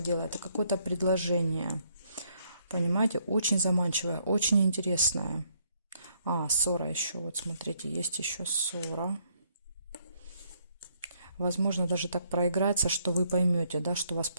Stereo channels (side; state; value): both; inverted; correlation -0.71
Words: дело. Это какое-то предложение. Понимаете? Очень заманчивое, очень интересное. Ссора еще. Вот смотрите, есть еще ссора. Возможно, даже так проиграется, что вы поймете, да, что вас